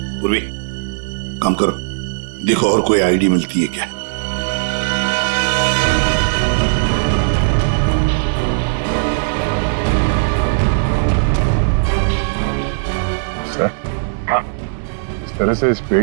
पूर्वी, काम करो, देखो और कोई आईडी मिलती है क्या। सर, इस तरह से इस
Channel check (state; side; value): silent; left; digital silence